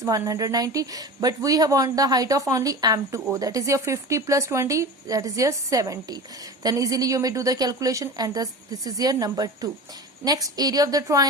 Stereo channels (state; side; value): normal; both; correlation 0.32